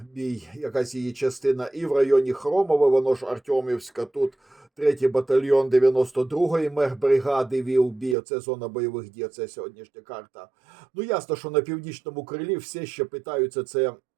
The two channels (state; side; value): drops out; left; at 8.2 s